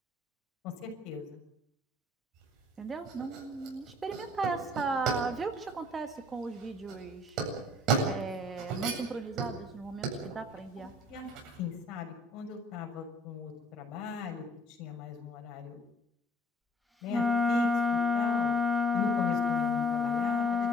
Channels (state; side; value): normal; both; correlation 0.57